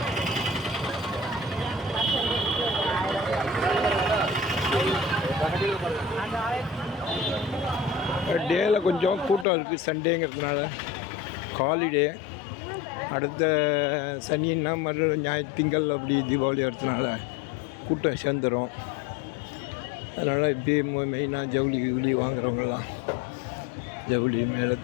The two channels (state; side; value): drops out; right; at 9.5 s